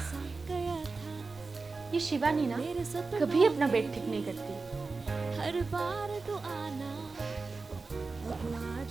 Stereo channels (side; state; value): left; quieter; 4.0 dB